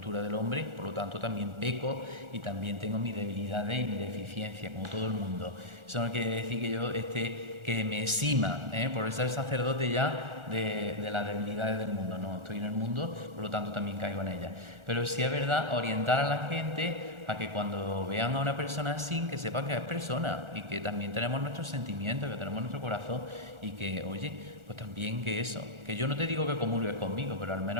del hombre, por lo tanto también peco y también tengo mis debilidades y mi deficiencia, como todo el mundo. Eso no quiere decir que yo que me exima, por ser sacerdote ya de las debilidades del mundo. No, estoy en el mundo, por lo tanto también caigo en ellas. Pero sí es verdad orientar a la gente a que cuando vean a una persona así, que sepan que es persona y que también tenemos nuestros sentimientos, que tenemos nuestro corazón y que, oye, pues también que eso, que yo no te digo que comulgues conmigo, pero al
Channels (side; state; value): left; late; 1.4 ms